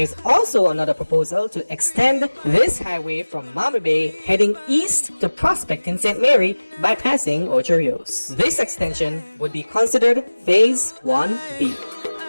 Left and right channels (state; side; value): inverted; both; correlation -1.00